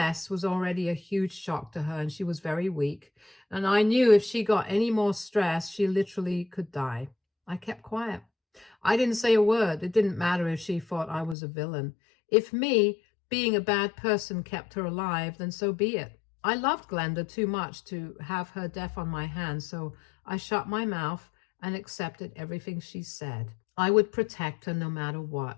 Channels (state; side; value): drops out; right; at 11.4 s